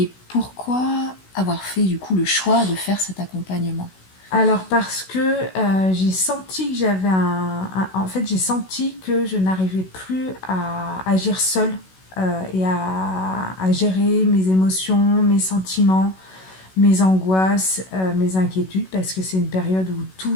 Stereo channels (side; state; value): right; late; 16 ms